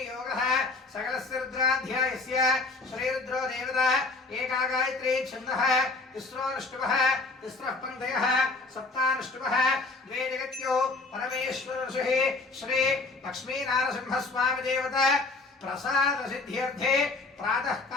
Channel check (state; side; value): quieter; right; 3.6 dB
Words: सकलस्य रुद्राध्यायस्य श्रीरुद्रो देवता एका गायत्री छन्दः तिस्रोऽनुष्टुभः तिस्रः पङ्क्तयः सप्तानुष्टुभः द्वे जगत्यो परमेश्वरर्षिः श्री लक्ष्मीनारसिंहस्वामी देवता प्रसाद सिद्ध्यर्थे प्रातः